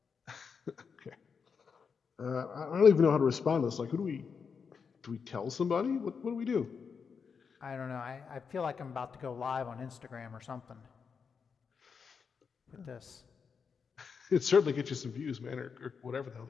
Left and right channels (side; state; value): right; quieter; 5.9 dB